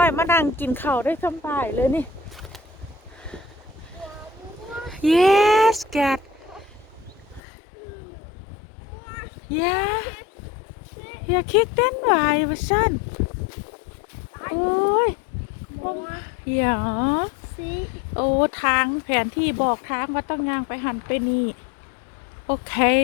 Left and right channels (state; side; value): drops out; right; at 7.4 s